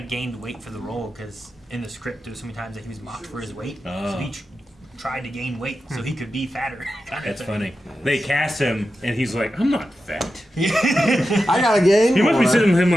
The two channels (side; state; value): both; normal; correlation 0.91